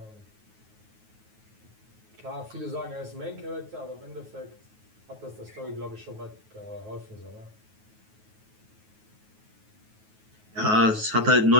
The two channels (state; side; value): late; left; 9.4 ms